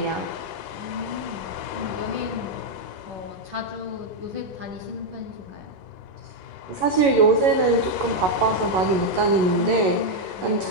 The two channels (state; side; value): late; left; 11 ms